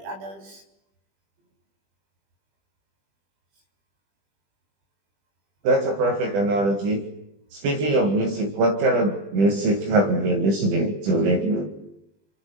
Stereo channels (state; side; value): late; left; 20 ms